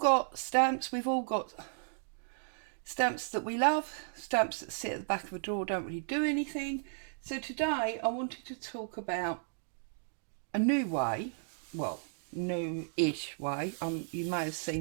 stamps, we've all got stamps that we love, stamps that sit at the back of a drawer, don't really do anything. So today I wanted to talk about a new way, well, new-ish way, you may have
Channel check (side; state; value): left; silent; digital silence